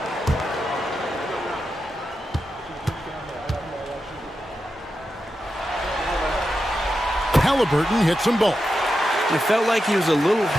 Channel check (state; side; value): normal; both; correlation 0.89